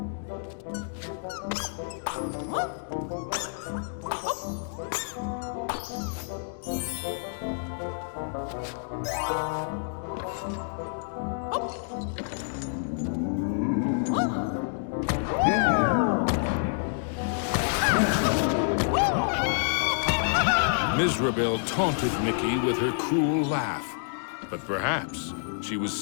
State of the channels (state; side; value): silent; right; digital silence